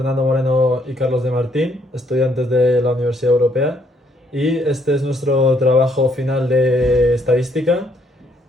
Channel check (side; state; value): both; normal; correlation 0.69